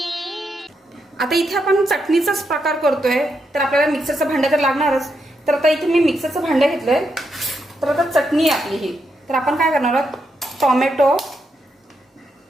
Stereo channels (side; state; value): both; normal; correlation 0.82